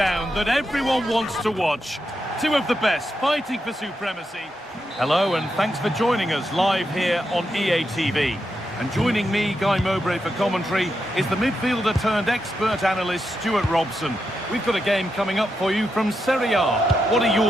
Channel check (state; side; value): normal; both; correlation 0.85